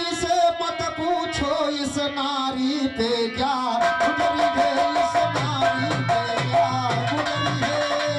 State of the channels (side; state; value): both; identical; correlation 1.00